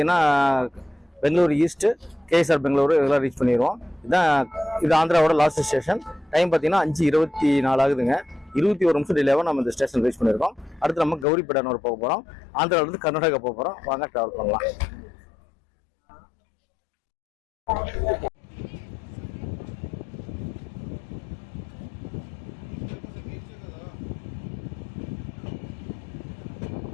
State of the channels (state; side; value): drops out; right; at 11.2 s